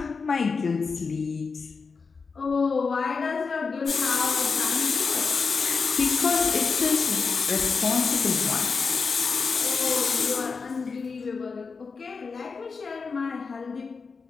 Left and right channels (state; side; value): quieter; right; 4.9 dB